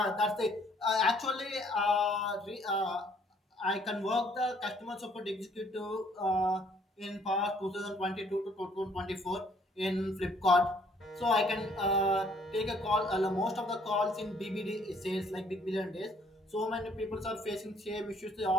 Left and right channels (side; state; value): both; normal; correlation 0.63